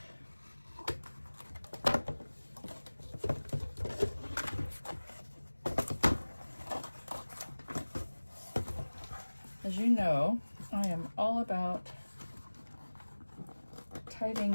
As you know, I am all about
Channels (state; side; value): inverted; both; correlation -1.00